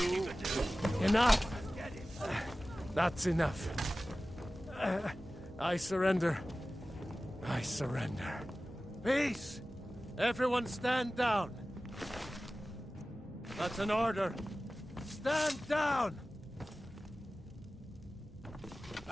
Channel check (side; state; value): both; normal; correlation 0.96